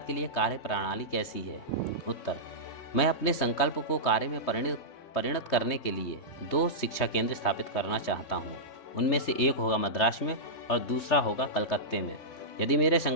के लिए कार्य प्रणाली कैसी है? उत्तर: मैं अपने संकल्प को कार्य में परिणत करने के लिए 2 शिक्षा केंद्र स्थापित करना चाहता हूँ। उनमें से एक होगा मद्रास में और दूसरा होगा कलकत्ते में। यदि मेरे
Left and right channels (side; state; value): right; late; 3.2 ms